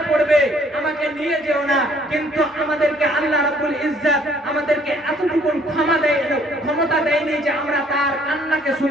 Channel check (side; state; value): both; normal; correlation 0.62